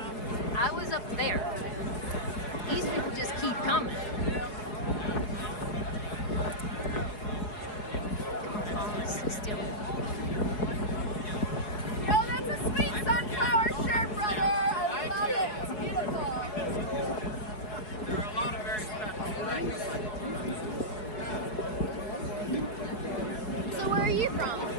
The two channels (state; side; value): late; right; 4.7 ms